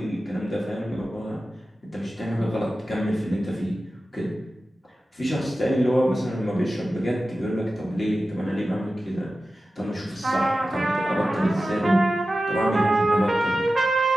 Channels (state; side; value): normal; both; correlation 0.94